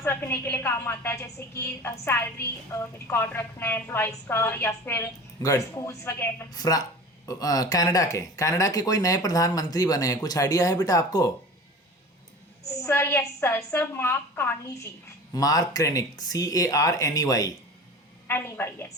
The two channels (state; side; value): normal; both; correlation 0.37